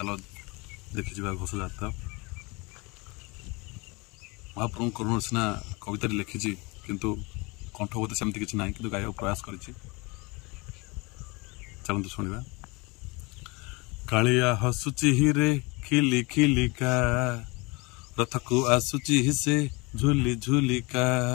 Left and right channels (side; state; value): right; quieter; 26.7 dB